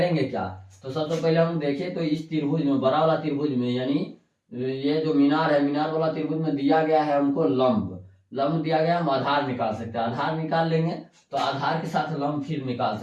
क्या। तो सबसे पहले हम देखें तो इस त्रिभुज में, बड़ा वाला त्रिभुज में, यानी ये जो मीनार है मीनार वाला त्रिभुज में दिया गया है हमको लंब दिया गया, हम आधार निकाल सकते हैं। आधार निकाल लेंगे तो आधार के साथ लंब फिर निकाल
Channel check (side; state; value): both; identical; correlation 1.00